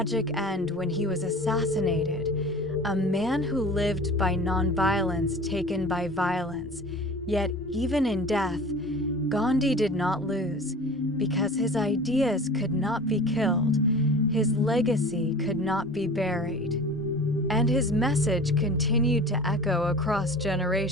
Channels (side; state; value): both; normal; correlation 0.39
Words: end when he was assassinated. A man who lived by nonviolence taken by violence. Yet even in death, Gandhi did not lose, because his ideas could not be killed, his legacy could not be buried, and his message continued to echo across